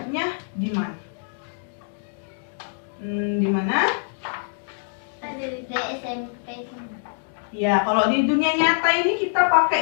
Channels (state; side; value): silent; right; digital silence